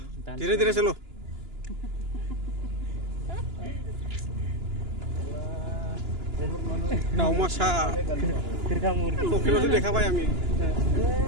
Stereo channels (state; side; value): late; left; 2.9 ms